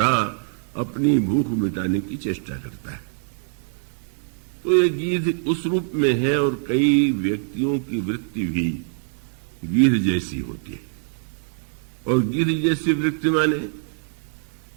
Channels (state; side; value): silent; left; digital silence